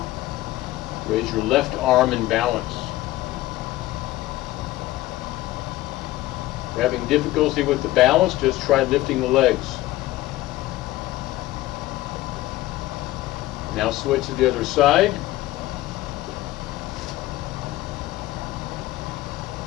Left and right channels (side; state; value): right; quieter; 16.6 dB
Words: Raise your left arm in balance. If you're having difficulty with the balance, just try lifting the legs. Now switch to the other side.